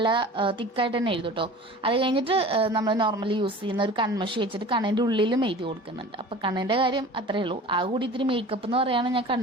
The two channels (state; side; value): normal; both; correlation 0.40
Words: തിക്കായിട്ട് തന്നെ എഴുതും കേട്ടോ. അത് കഴിഞ്ഞിട്ട് നമ്മൾ നോർമലി യൂസ് ചെയ്യുന്ന ഒരു കൺമഷി വെച്ചിട്ട് കണ്ണിന്റെ ഉള്ളിലും എഴുതി കൊടുക്കുന്നുണ്ട്. അപ്പോൾ കണ്ണിന്റെ കാര്യം അത്രേ ഉള്ളൂ. ആ കൂടി ഇത്തിരി മേക്കപ്പ് എന്ന് പറയുകയാണ് ഞാൻ